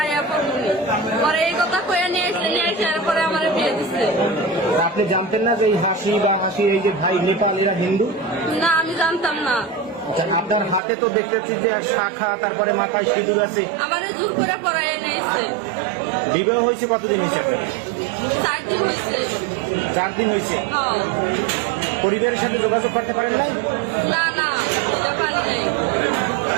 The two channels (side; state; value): left; drops out; at 10.8 s